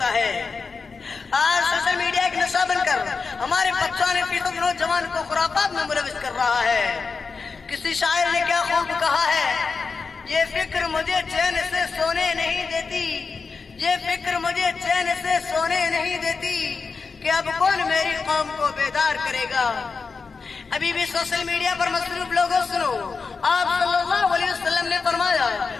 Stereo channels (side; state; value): right; quieter; 4.8 dB